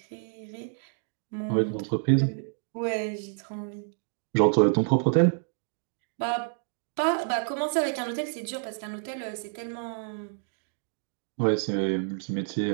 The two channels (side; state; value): left; silent; digital silence